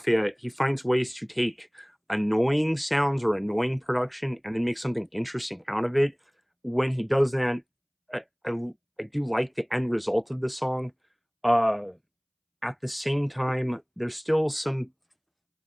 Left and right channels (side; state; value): both; identical; correlation 1.00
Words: he finds ways to take annoying sounds or annoying production and then make something interesting out of it. When he does that, I, I, I do like the end result of the song. Uh, at the same time, there's still some.